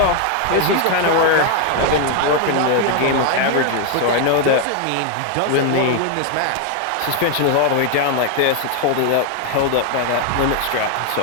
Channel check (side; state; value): both; different; correlation 0.01